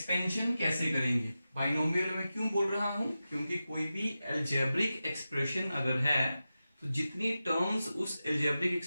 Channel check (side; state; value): both; inverted; correlation -0.93